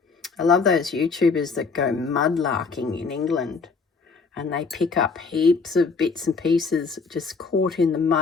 I love those YouTubers that go mudlarking in England and they pick up heaps of bits and pieces just caught in the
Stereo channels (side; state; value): right; quieter; 4.7 dB